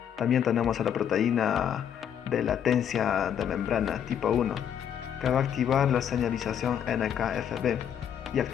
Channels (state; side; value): quieter; right; 9.0 dB